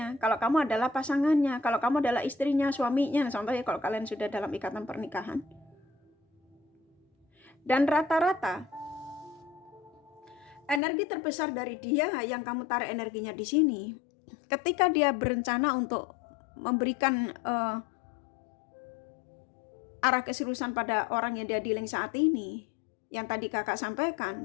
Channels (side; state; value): right; drops out; at 10.8 s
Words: kalau kamu adalah pasangannya, kalau kamu adalah istrinya, suaminya, contohnya kalau kalian sudah dalam ikatan pernikahan. Dan rata-rata energi terbesar dari dia yang kamu tarik energinya di sini, ketika dia berencana untuk memberikan arah keseriusan pada orang yang dia dealing saat ini, yang tadi kakak